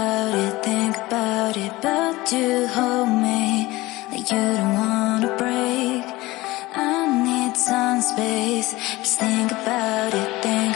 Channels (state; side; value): quieter; right; 19.9 dB